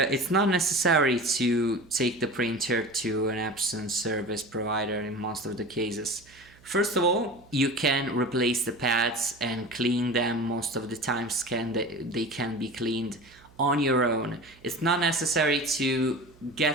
not necessary to take the printer to an Epson service provider in most of the cases. First of all, you can replace the pads and clean them. Most of the times they can be cleaned on your own. It's not necessary to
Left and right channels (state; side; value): noise; right; hum, 27 dB below the sound